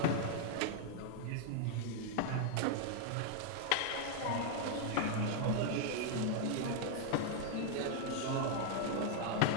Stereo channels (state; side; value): different; both; correlation 0.00